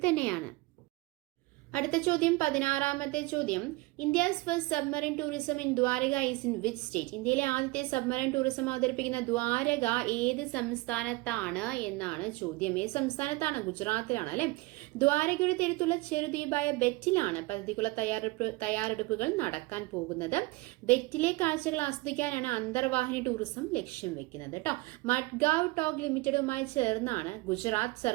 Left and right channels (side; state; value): left; quieter; 22.5 dB